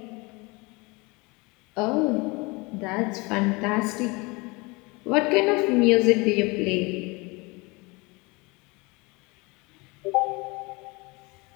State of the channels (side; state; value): right; quieter; 26.3 dB